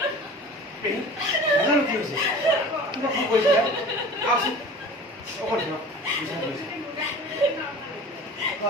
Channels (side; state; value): both; normal; correlation 0.40